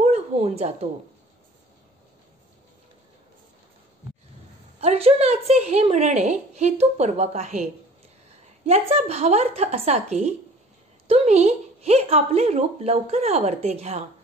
होऊन जातो. अर्जुनाचे हे म्हणणे हेतुपूर्वक आहे. याचा भावार्थ असा की तुम्ही हे आपले रूप लवकर आवरते घ्या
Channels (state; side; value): normal; both; correlation 0.48